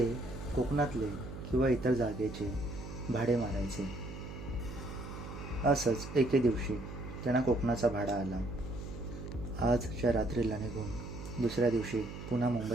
कोकणातले किंवा इतर जागेचे भाडे मारायचे. असंच एके दिवशी त्यांना कोकणाचा भाडा आला. आजच्या रात्रीला निघून दुसऱ्या दिवशी पुन्हा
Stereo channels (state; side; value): noise; right; hum, 10 dB below the sound